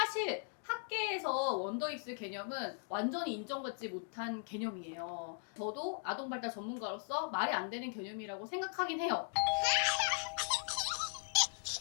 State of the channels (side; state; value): right; silent; 52 dB below the other